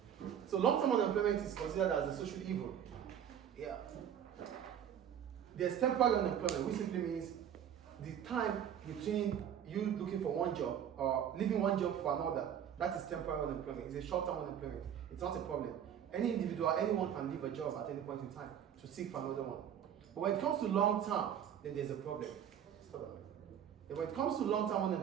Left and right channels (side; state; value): left; quieter; 9.3 dB